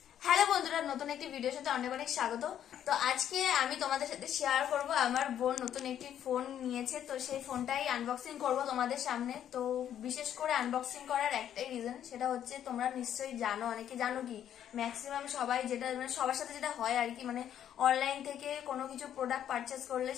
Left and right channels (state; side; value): quieter; right; 10.2 dB